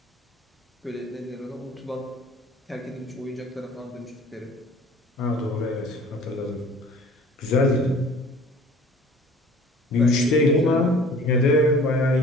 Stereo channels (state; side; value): normal; both; correlation 0.48